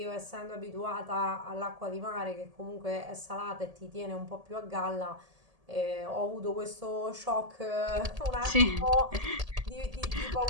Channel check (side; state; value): left; late; 1.7 ms